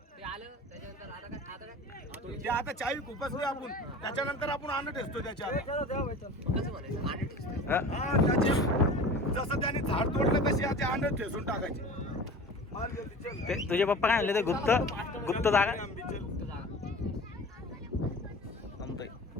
ते आता चावी खुपसली आपण त्याच्यानंतर आपण आणत ठेचतो त्याच्या जसं त्याने झाड तोडलं तशी आता आणत ठेचून टाकायची. तुझे पप्पा काय म्हणले ते गुप्त गुप्त जागा जमतोय.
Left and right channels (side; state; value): both; normal; correlation 0.38